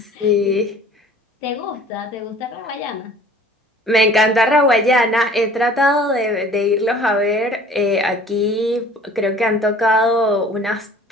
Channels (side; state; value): both; normal; correlation 0.49